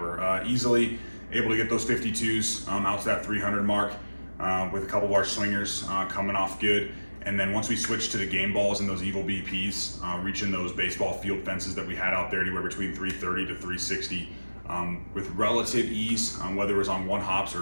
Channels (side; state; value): both; inverted; correlation -1.00